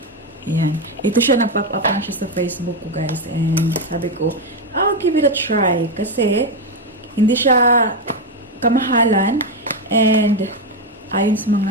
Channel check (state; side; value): normal; both; correlation 0.08